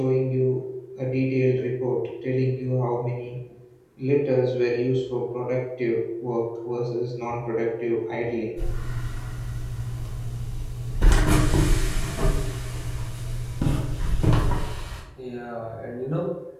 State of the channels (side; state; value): both; identical; correlation 1.00